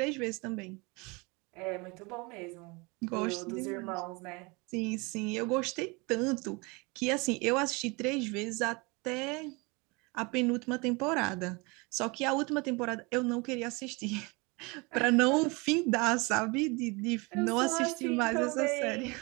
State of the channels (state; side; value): quieter; left; 27.5 dB